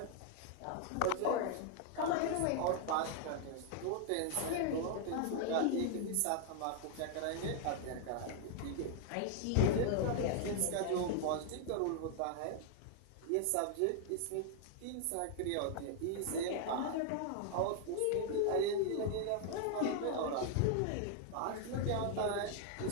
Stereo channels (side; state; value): both; different; correlation 0.00